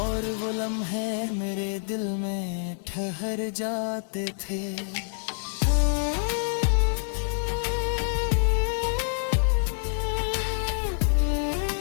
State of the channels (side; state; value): right; silent; digital silence